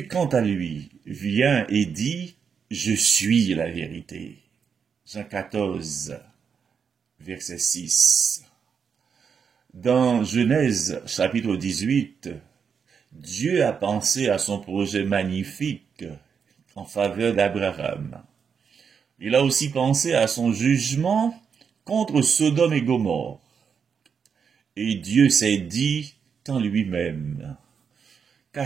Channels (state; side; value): quieter; left; 6.5 dB